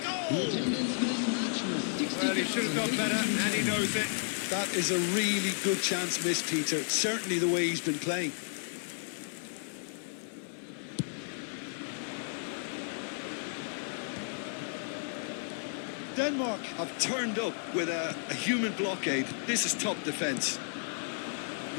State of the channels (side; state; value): right; silent; digital silence